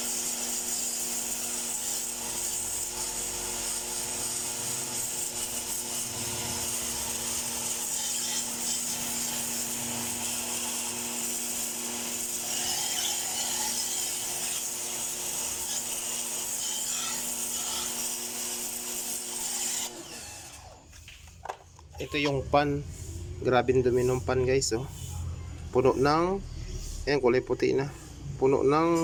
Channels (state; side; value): identical; both; correlation 1.00